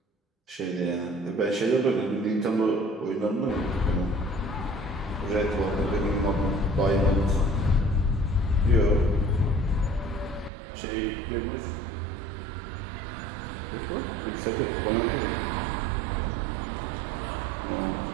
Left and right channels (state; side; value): drops out; left; at 10.5 s